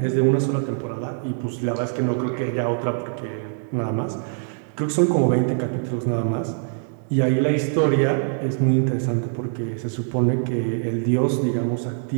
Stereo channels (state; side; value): silent; left; digital silence